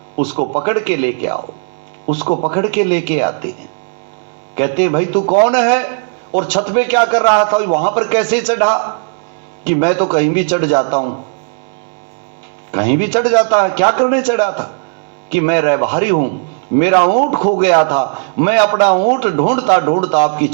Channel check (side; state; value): left; silent; digital silence